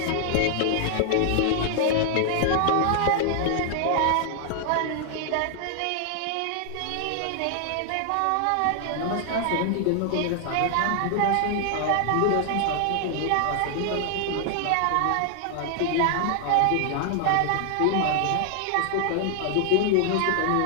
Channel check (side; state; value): both; different; correlation 0.00